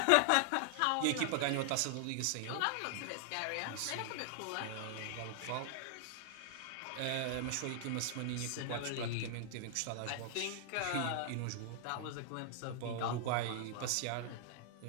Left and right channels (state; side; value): different; both; correlation -0.01